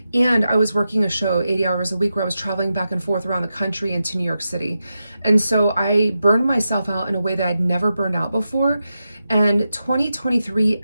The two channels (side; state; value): both; inverted; correlation -0.89